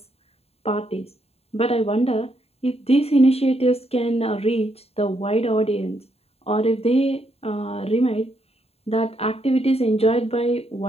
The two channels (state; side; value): late; right; 0.29 ms